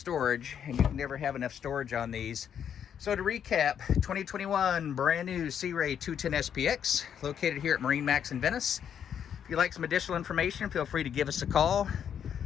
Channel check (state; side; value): quieter; right; 8.5 dB